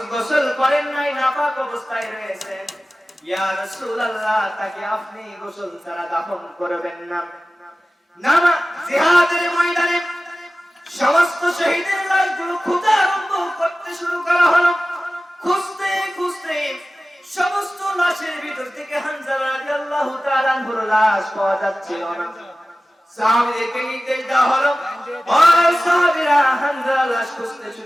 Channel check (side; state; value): both; normal; correlation 0.96